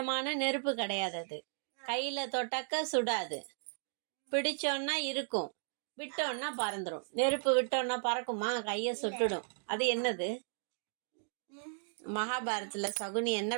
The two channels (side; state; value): left; silent; digital silence